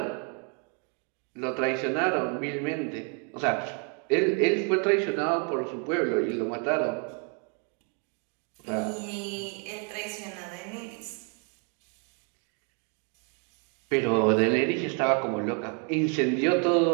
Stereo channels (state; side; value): quieter; left; 38.8 dB